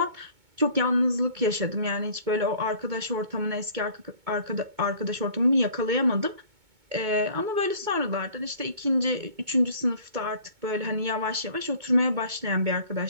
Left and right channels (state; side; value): late; left; 2.2 ms